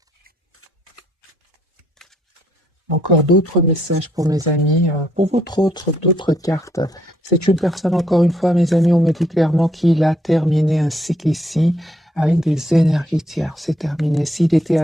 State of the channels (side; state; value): both; normal; correlation 0.70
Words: Encore d'autres messages pour mes amis. Pour d'autres cartes, c'est une personne, encore une fois, mes amis, on me dit clairement qu'il a terminé un cycle ici avec des énergies tierces. C'est terminé. S'il